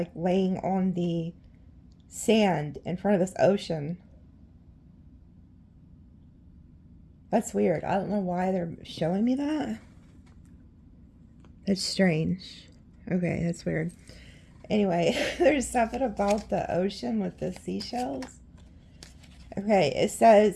laying on the sand in front of this ocean. That's weird. I don't know why they're showing me that. That's strange. Okay, that's weird. Anyway, there's something about the ocean with the seashells. Okay, it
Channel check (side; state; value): both; identical; correlation 1.00